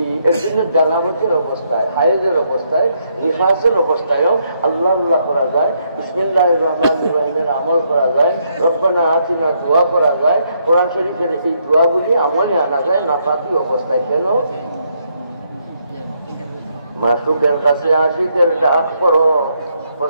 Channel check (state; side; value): inverted; both; correlation -0.75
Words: এর জন্য জানাবতের অবস্থায়, হায়েজের অবস্থায়, নিফাসের অবস্থায়ও আল্লাহ আল্লাহ করা যায়, বিসমিল্লাহির রহমানির রহিমের আমল করা যায়, রব্বানা আতিনা দোয়া করা যায়। কোরআন শরীফের এই দোয়াগুলি আমলে আনা যায় নাফাকি অবস্থায়। কেন? মাসুকের কাছে আশিকের ডাক পড়ো,